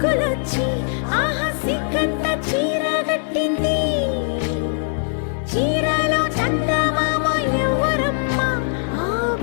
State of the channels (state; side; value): silent; right; 65 dB below the other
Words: ఆహా సిగ్గంత చీర కట్టింది. చీరలో చందమామ ఎవరమ్మ, ఆ